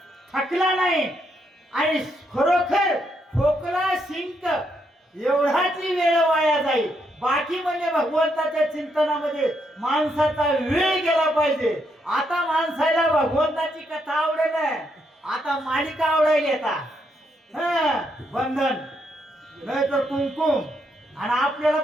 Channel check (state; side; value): normal; both; correlation 0.77